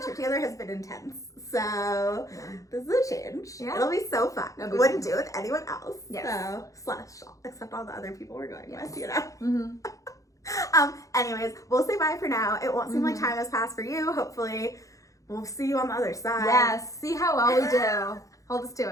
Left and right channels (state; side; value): late; right; 0.16 ms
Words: together has been intense. So this is a change. Yeah. It'll be so fun. Wouldn't do it with anyone else. Yes. So except all the other people we're going with, you know. Anyways, we'll say bye for now. It won't seem like time has passed for you. Hopefully we'll see you on the other side. Yes. See how well we do. Hold us